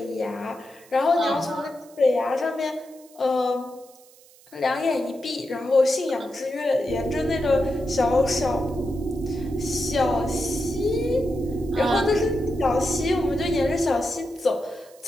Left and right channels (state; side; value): noise; right; hiss, 26 dB below the sound